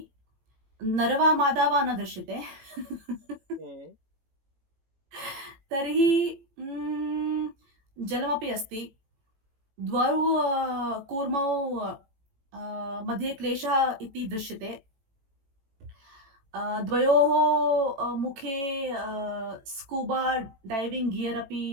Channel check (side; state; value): left; late; 18 ms